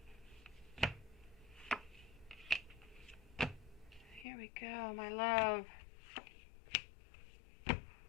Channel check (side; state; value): right; drops out; at 4.2 s